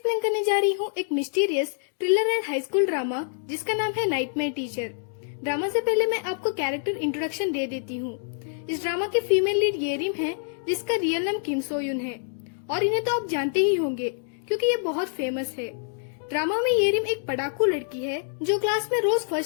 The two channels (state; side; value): silent; right; digital silence